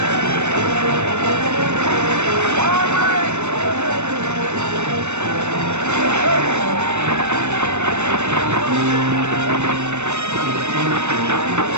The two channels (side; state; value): left; late; 0.82 ms